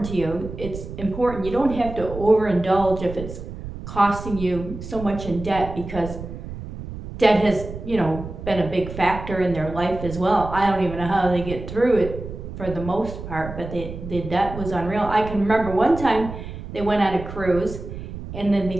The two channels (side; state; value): right; noise; rumble, 10 dB below the sound